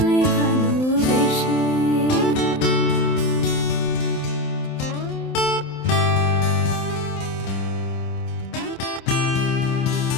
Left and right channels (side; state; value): right; late; 27 ms